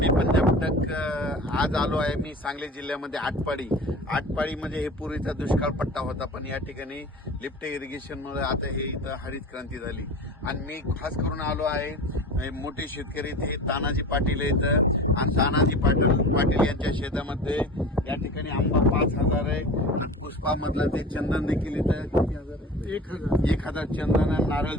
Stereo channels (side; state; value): both; normal; correlation 0.36